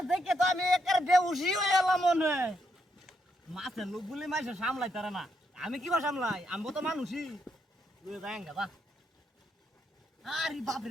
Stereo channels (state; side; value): normal; both; correlation 0.78